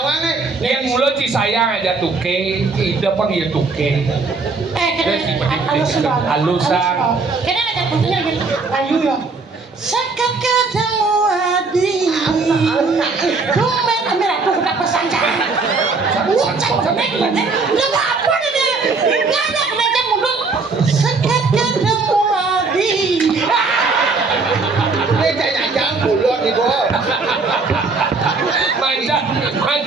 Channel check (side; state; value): left; quieter; 4.1 dB